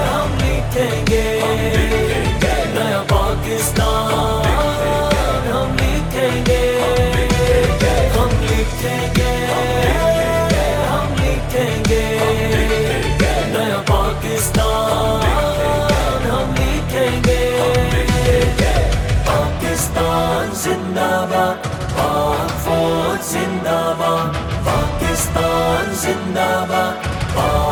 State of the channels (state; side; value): identical; both; correlation 1.00